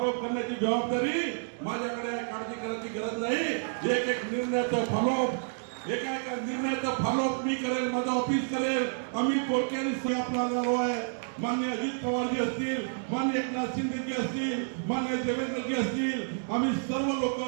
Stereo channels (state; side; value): silent; left; digital silence